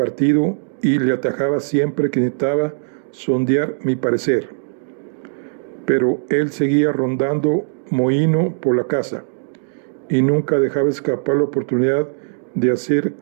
y le atajaba siempre que necesitaba sondear mi parecer. Pero él seguía rondando mohíno por la casa y nunca dejaba escapar la oportunidad de hacer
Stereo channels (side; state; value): left; silent; digital silence